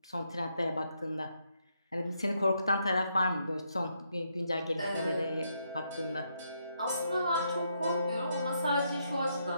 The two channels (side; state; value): both; inverted; correlation -0.77